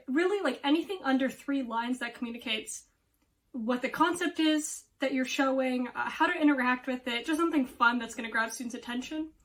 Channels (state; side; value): identical; both; correlation 1.00